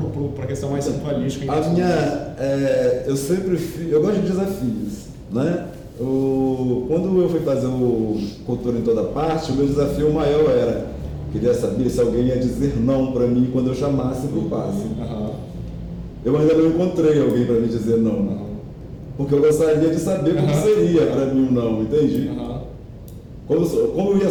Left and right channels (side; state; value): both; identical; correlation 1.00